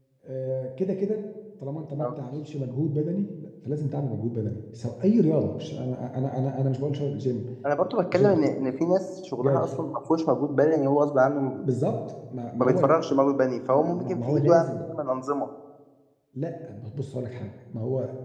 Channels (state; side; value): identical; both; correlation 1.00